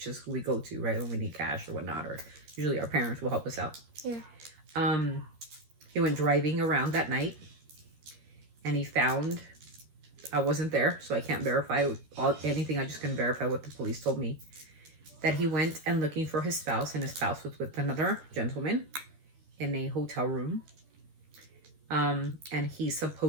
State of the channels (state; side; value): late; left; 13 ms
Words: is who we go to, right, when we need cash or whatnot, or usually our parents will help us out. Yeah. He went driving around that night, and he found, I wasn't there, so I can't verify anything. I just can verify what the police told me, that he went and looking for his spouse, and his spouse was with another gentleman in a hotel room. And he